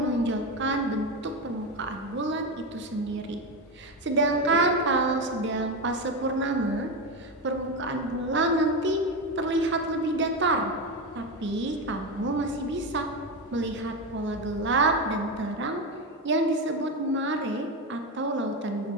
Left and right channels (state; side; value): normal; both; correlation 0.15